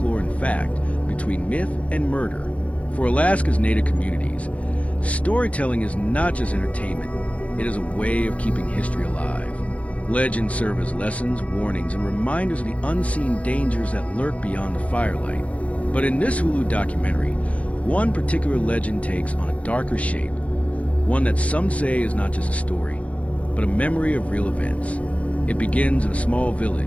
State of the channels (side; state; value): right; late; 0.065 ms